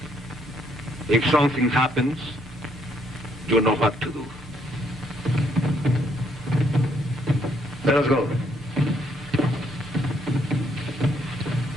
If something happens, you know what to do. Let us go.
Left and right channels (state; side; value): normal; both; correlation 0.70